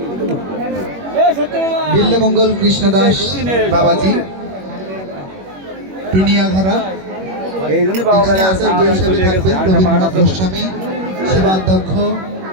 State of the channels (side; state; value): left; late; 21 ms